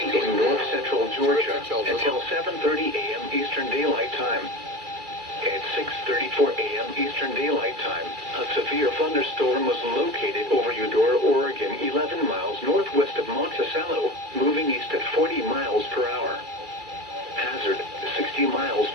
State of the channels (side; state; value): left; late; 2.3 ms